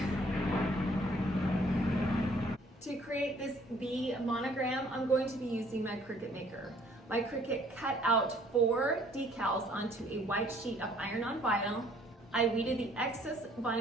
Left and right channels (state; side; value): normal; both; correlation 0.59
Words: To create this V monogram, I'm going to be using my Cricut maker. My Cricut cut out 4 decals onto a white sheet of iron-on vinyl. I weeded the excess